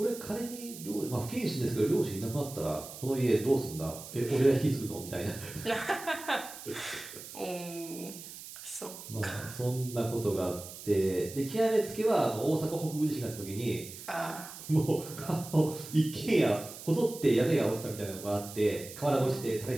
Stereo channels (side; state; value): right; noise; hiss, 13 dB below the sound